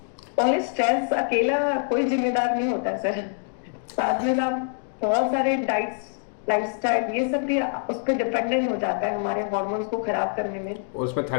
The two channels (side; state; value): right; silent; 62 dB below the other